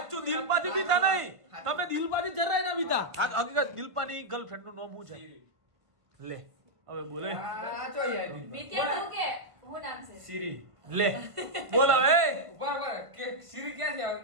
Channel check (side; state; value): left; late; 1.5 ms